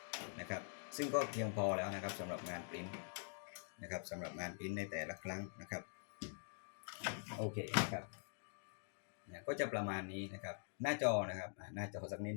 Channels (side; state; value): right; silent; digital silence